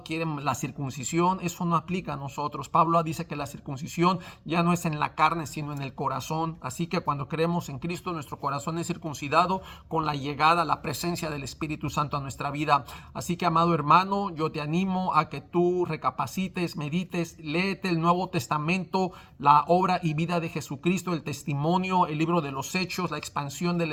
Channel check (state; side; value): identical; both; correlation 1.00